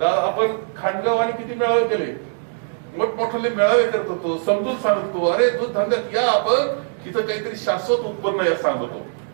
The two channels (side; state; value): left; silent; 65 dB below the other